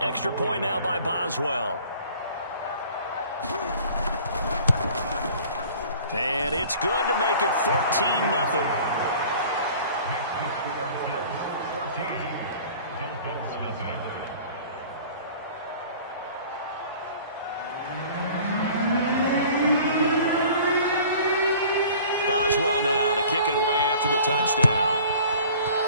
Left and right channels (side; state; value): both; inverted; correlation -0.48